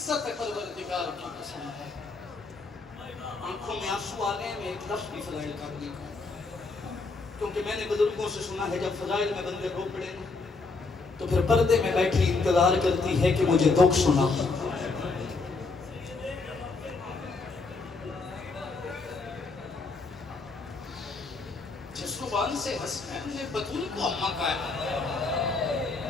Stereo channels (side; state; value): right; quieter; 3.9 dB